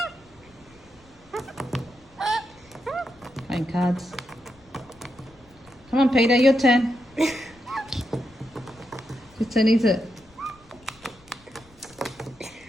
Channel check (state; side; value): noise; left; rumble, 27 dB below the sound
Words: Playing cards. Come on, Peter, your turn. Whose turn is it?